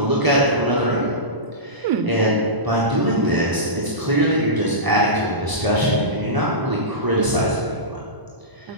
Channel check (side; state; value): left; late; 1.0 ms